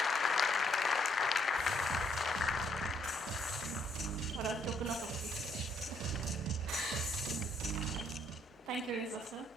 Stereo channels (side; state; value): both; normal; correlation 0.69